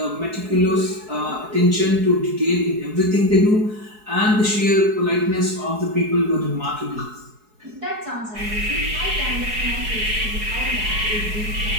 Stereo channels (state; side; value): late; left; 4.7 ms